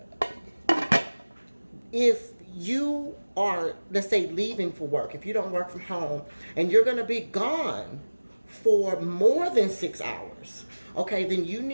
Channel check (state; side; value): inverted; both; correlation -1.00